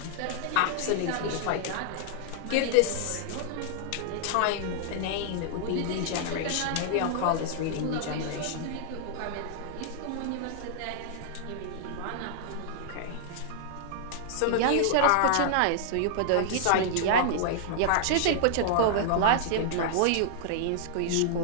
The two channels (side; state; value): both; different; correlation -0.01